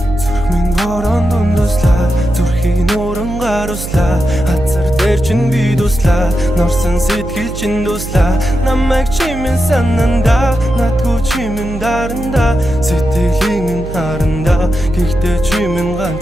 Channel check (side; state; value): right; noise; hum, 9 dB below the sound